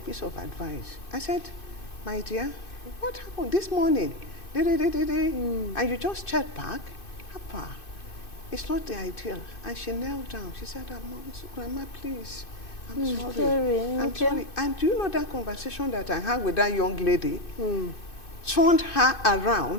of advice. I said, my dear, what happened this morning? And you just checked back? Papa, it's not the ideal. And she knelt down. She said, Grandma, please, I'm sorry. I'm sorry. And do you know that conversation that I had with that young lady turned her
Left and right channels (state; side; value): late; right; 2.6 ms